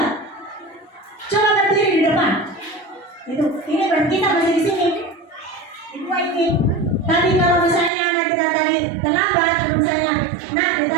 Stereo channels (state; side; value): drops out; left; at 7.9 s